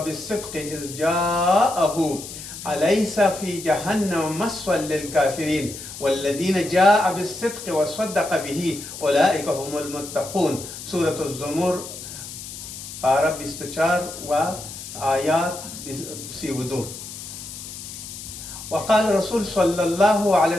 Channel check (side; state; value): left; noise; hiss, 11 dB below the sound